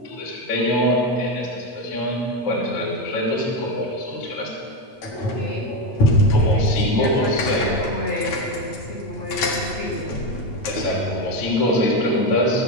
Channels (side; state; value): right; late; 8.8 ms